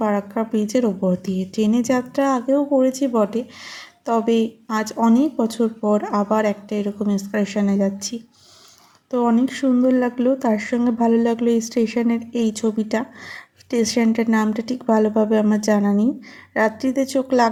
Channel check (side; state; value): both; identical; correlation 1.00